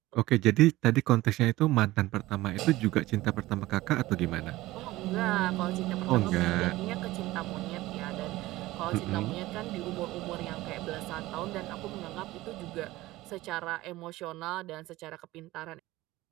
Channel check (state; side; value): quieter; left; 17.9 dB